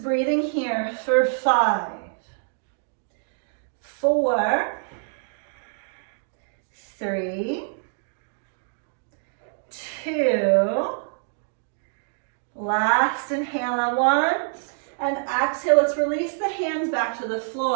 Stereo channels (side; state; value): left; silent; digital silence